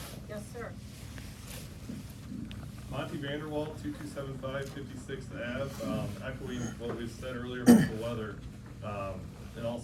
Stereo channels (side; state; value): both; identical; correlation 1.00